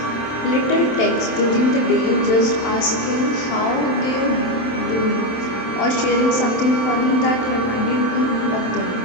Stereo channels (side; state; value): right; late; 27 ms